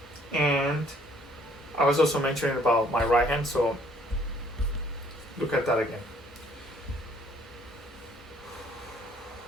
and I was also mentioning about my right hand, so look at that again.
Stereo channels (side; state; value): both; normal; correlation 0.62